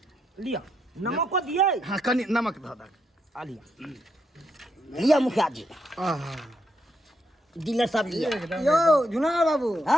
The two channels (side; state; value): both; normal; correlation 0.79